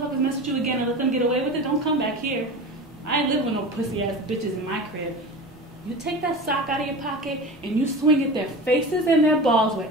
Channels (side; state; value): both; normal; correlation 0.31